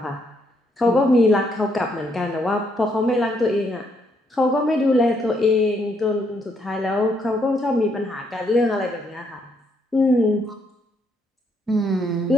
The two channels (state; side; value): normal; both; correlation 0.73